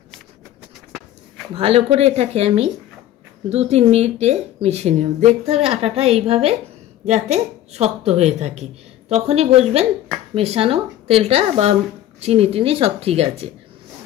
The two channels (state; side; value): quieter; right; 12.7 dB